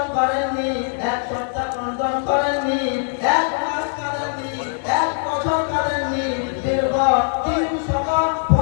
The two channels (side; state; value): right; silent; digital silence